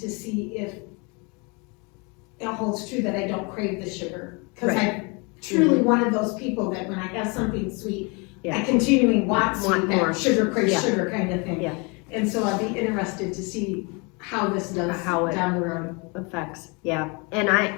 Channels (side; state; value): right; quieter; 30.5 dB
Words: see if it holds true that I don't crave the sugar. Because Right. I'm truly one of those people that when I have something sweet, Yeah. I continually want Want sweet, more. that sugar craves Yeah. sugar kind of thing. Yeah. And so I'd be interested to see how this does How it down the road. Effects, yeah. And